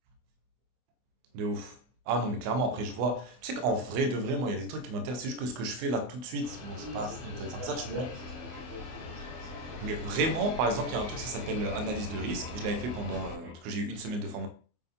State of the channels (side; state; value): left; late; 24 ms